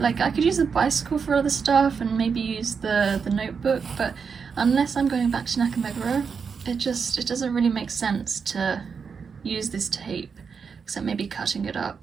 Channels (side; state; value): left; quieter; 5.9 dB